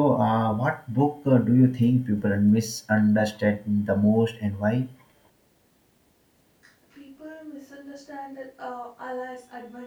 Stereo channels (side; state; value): both; identical; correlation 1.00